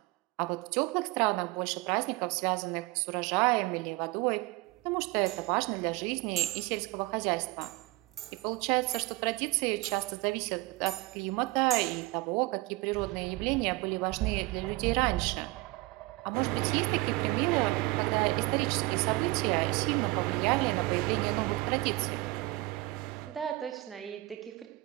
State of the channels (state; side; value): quieter; left; 20.9 dB